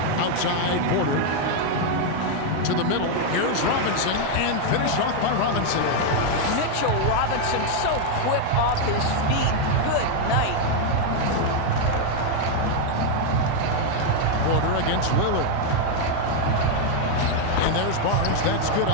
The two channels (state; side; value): different; both; correlation 0.00